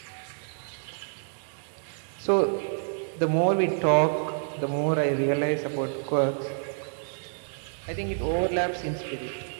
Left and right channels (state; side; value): silent; left; digital silence